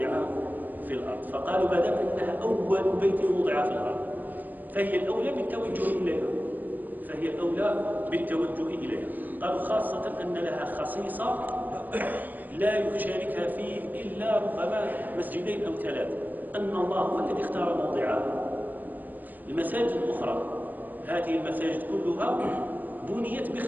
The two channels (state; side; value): late; left; 0.086 ms